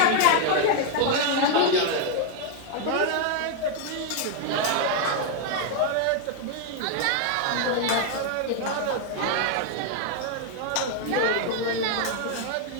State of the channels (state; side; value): different; both; correlation 0.00